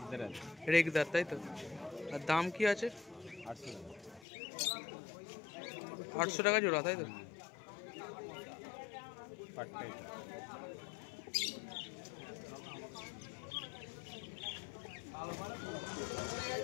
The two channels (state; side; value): drops out; right; at 4.2 s